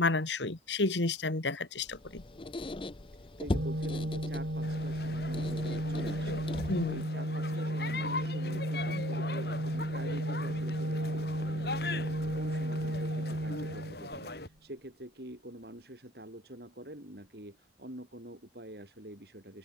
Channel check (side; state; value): both; normal; correlation 0.53